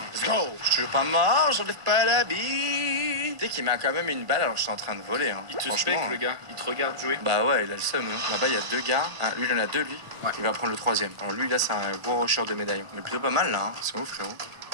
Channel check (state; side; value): late; left; 1.4 ms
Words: Let's go! Je suis toujours pas mort, j'enlève pas la bille. Tu sais qu'il m'a quand même une balle alors que je suis en train de voler. Hein. Il te Franchement, spec, le gars. Il te regarde jouer. Bah ouais, il a le seum. Hein. Là-bas, il y a 2 gars. Lui, il en a 2, lui. Ouais. Il va prendre le 3e. Alors lui, là, c'est un gros rusher de médaillon. Mais plutôt pas mal, là. Hein. Ils sont où, frérot?